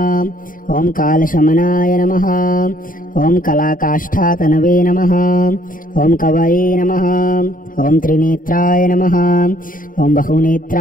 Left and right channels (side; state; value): right; late; 0.40 ms